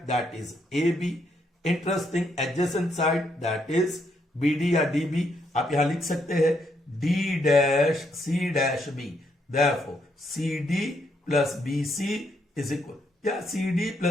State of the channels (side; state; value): both; normal; correlation 0.75